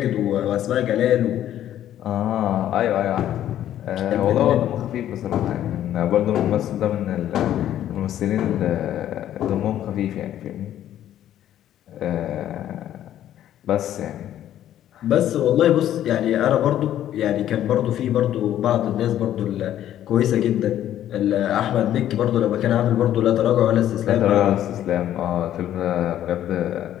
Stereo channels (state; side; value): quieter; right; 11.7 dB